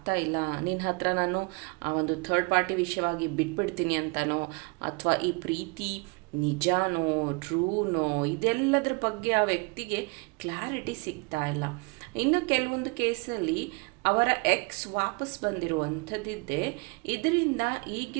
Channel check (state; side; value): quieter; left; 29.4 dB